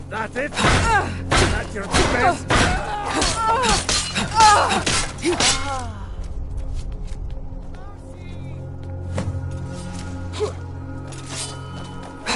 That's it? That's your best?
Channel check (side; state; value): both; identical; correlation 1.00